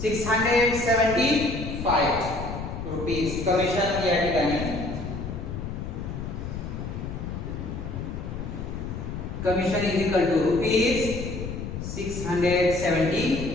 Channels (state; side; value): noise; left; rumble, 6 dB below the sound